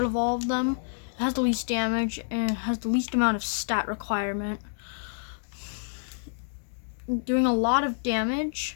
of all of them. It has the least damage and has the least amount of stat requirement. Doing a lot of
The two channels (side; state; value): right; silent; digital silence